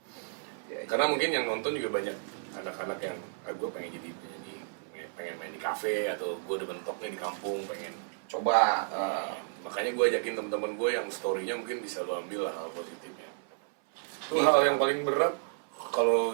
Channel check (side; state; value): left; silent; 57 dB below the other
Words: Karena mungkin yang nonton juga banyak anak-anak yang gue pengen pengen main di kafe, atau gue udah mentoknya di kampung pengen coba. Makanya gue ajakin teman-teman gue yang story-nya mungkin bisa lo ambil lah hal positifnya. Itu hal yang paling berat.